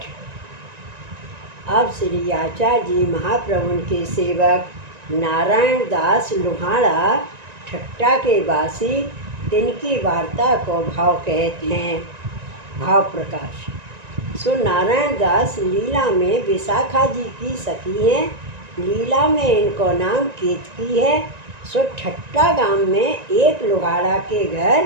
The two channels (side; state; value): left; late; 1.9 ms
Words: अब श्री आचार्य जी महाप्रभु के सेवक नारायण दास लोहाड़ा ठट्टा के वासी तिनकी वार्ता को भाव कहते हैं। भाव प्रकाश। सो नारायण दास लीला में विशाखा जी की सखी हैं। लीला में इनको नाम केतकी है। सो ठट्टा गांव में एक लोहाड़ा के घर